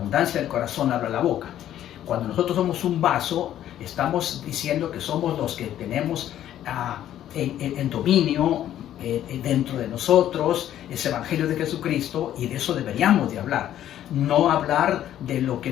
del corazón habla la boca. Cuando nosotros somos un vaso, estamos diciendo que somos los que tenemos en dominio dentro de nosotros ese evangelio de Jesucristo, y de eso deberíamos de hablar. No hablar de lo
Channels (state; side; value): quieter; right; 11.7 dB